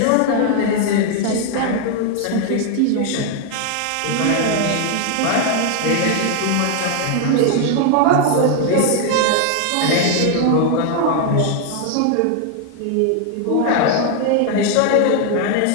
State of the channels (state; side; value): different; both; correlation 0.00